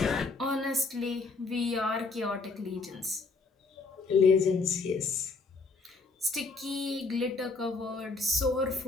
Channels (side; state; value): right; quieter; 3.9 dB